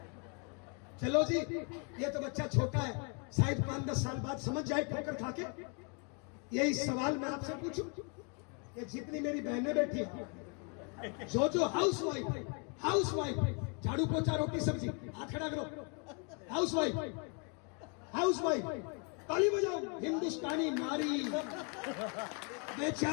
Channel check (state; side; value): quieter; right; 36.7 dB